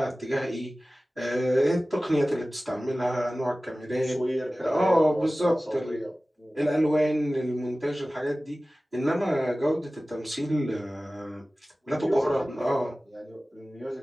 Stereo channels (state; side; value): normal; both; correlation 0.97